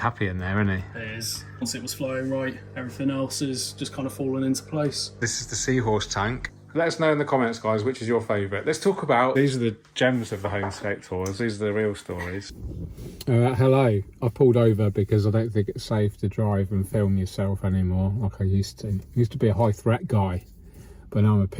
in there, isn't he? It is. Once it was flowing right, everything else is just kind of falling into place. This is the Seahorse tank. Let us know in the comments, guys, which is your favourite. Let's talk about... These are the gems of the homescape tours. These are the real stories. Hello. I pulled over because I don't think it's safe to drive and film yourself anymore like I used to. I used to be a high threat guy, but now I'm a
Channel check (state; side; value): identical; both; correlation 1.00